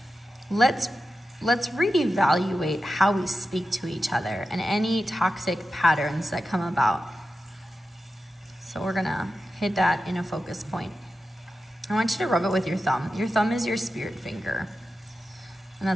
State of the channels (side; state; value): both; normal; correlation 0.92